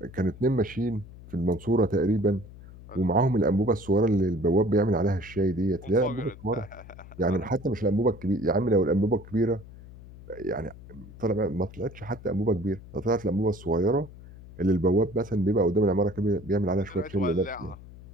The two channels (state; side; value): noise; left; hum, 18 dB below the sound